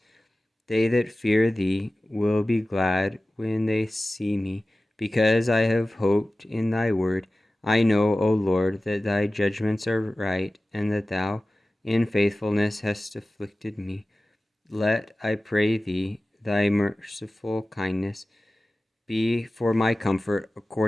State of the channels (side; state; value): both; normal; correlation 0.96